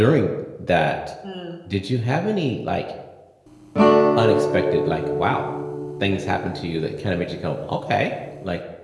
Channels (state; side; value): identical; both; correlation 1.00